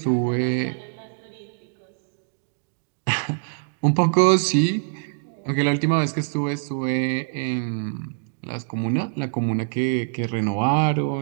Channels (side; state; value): left; silent; digital silence